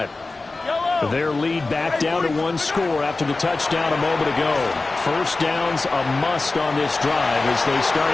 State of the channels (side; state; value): right; quieter; 3.5 dB